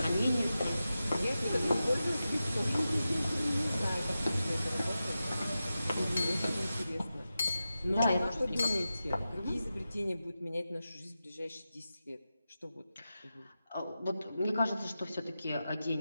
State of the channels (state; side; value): inverted; both; correlation -0.92